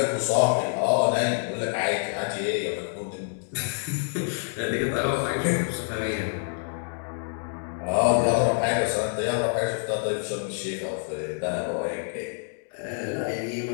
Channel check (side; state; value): right; silent; digital silence